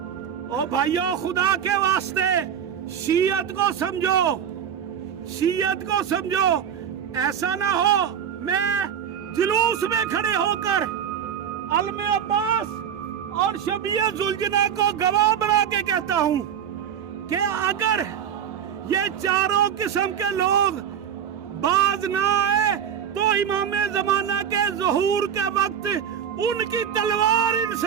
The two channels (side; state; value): left; quieter; 8.6 dB